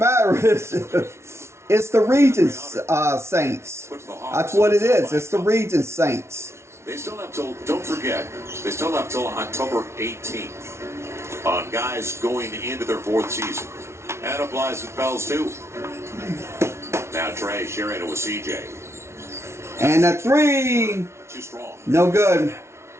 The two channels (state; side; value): late; left; 0.13 ms